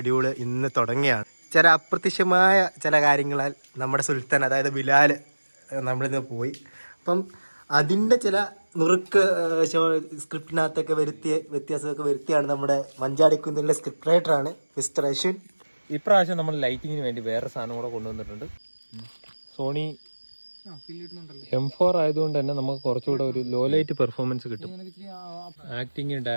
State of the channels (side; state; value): both; inverted; correlation -1.00